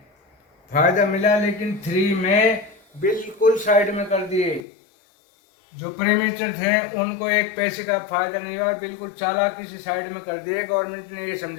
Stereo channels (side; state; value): right; drops out; at 4.6 s